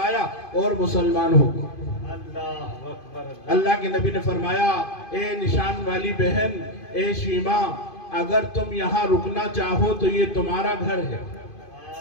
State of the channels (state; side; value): late; right; 2.5 ms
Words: اور مسلمان ہو گئے۔ اللہ کے نبی نے فرمایا اے نشان والی بہن، اے شیما، اگر تم یہاں رکنا چاہو تو یہ تمہارا گھر ہے،